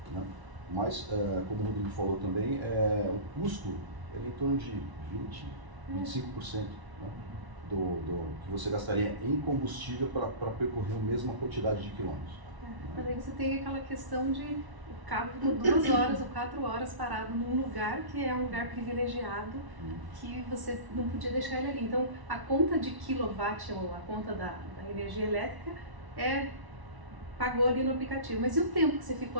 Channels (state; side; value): late; left; 1.0 ms